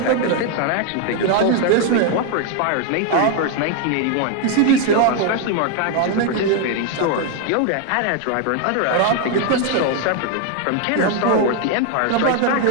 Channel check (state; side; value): different; both; correlation 0.01